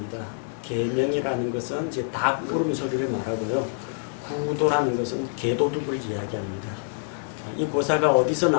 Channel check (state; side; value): silent; right; digital silence